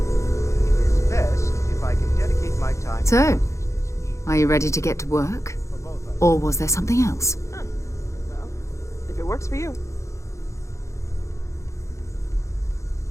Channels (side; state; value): right; late; 0.14 ms